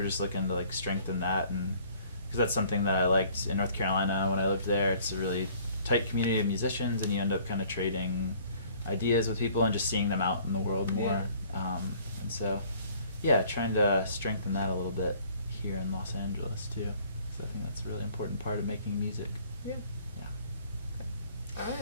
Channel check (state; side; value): inverted; both; correlation -0.56